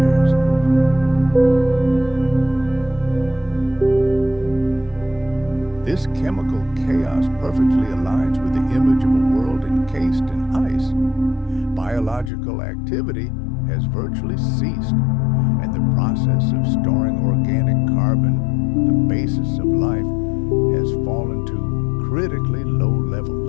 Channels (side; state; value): right; drops out; at 12.3 s